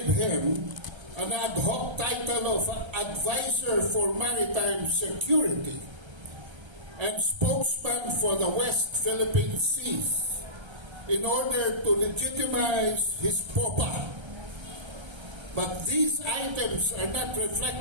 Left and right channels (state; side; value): late; left; 1.3 ms